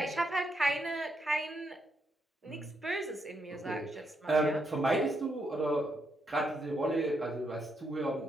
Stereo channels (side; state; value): both; normal; correlation 0.79